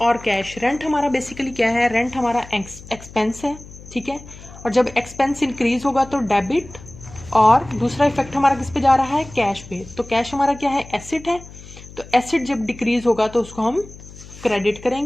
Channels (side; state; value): left; noise; hum, 18 dB below the sound